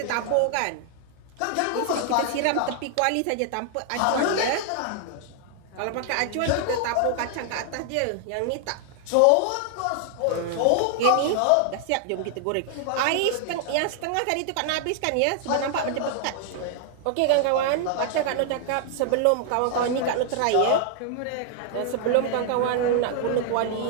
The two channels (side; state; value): both; different; correlation 0.00